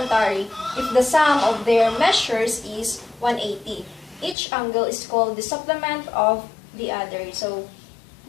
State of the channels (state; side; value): drops out; right; at 4.4 s